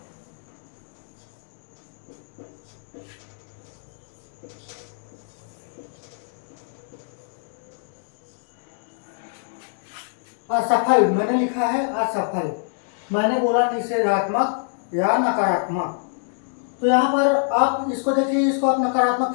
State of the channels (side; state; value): right; silent; digital silence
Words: असफल मैंने लिखा है असफल, मैंने बोला निषेधात्मक या नकारात्मक। तो यहाँ पर आप इसको देखिए, इसको आप नकारात्मक